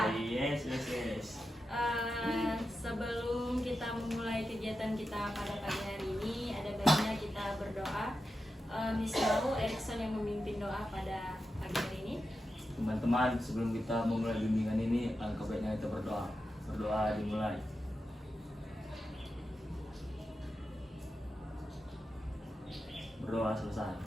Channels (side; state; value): both; normal; correlation 0.90